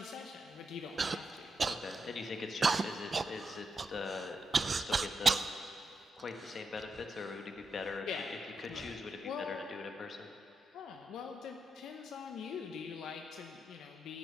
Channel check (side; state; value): both; normal; correlation 0.85